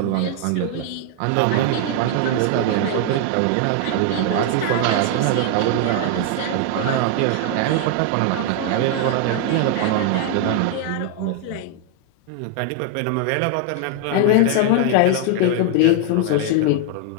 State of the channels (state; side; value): different; both; correlation 0.00